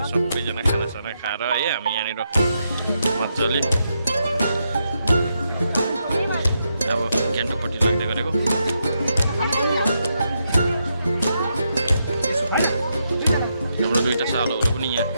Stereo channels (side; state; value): both; inverted; correlation -0.82